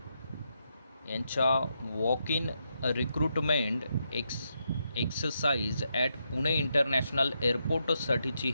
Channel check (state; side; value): inverted; both; correlation -0.82